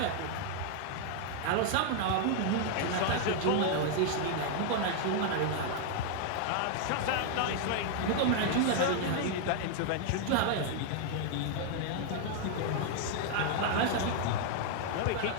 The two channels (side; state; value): both; different; correlation 0.00